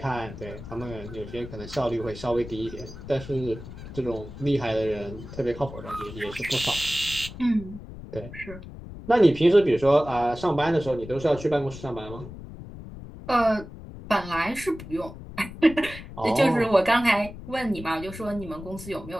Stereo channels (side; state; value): left; noise; rumble, 13 dB below the sound